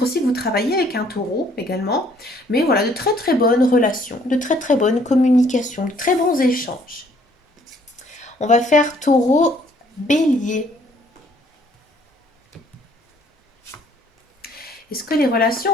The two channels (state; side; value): normal; both; correlation 0.62